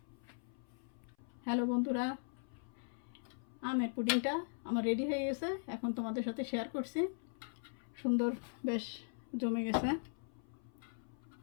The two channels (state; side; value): silent; right; 51 dB below the other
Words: হ্যালো বন্ধুরা, আমের পুডিংটা আমার রেডি হয়ে গেছে, এখন তোমাদের সাথে শেয়ার করছি। সুন্দর বেশ জমে গেছে।